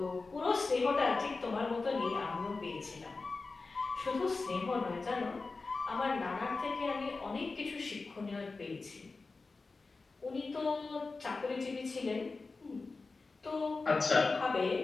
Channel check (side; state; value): right; quieter; 3.9 dB